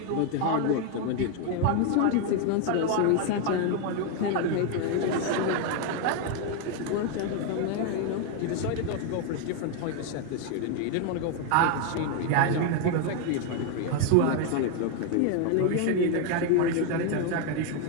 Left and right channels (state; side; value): different; both; correlation 0.01